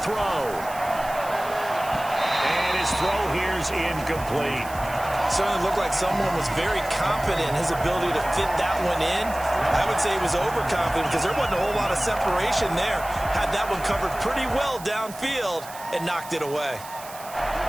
throw. And his throw here's incomplete. Certainly looked like someone was very confident in his ability to fit that one in. I would say he was overconfident because there wasn't a whole lot of separation there. Had that one covered pretty well downfield and knocked it away.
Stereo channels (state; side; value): noise; right; hiss, 16 dB below the sound